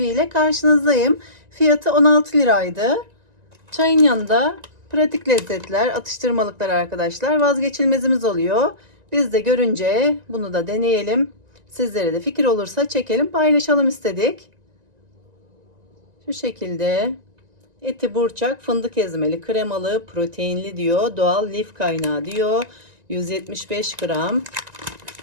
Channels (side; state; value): left; late; 1.9 ms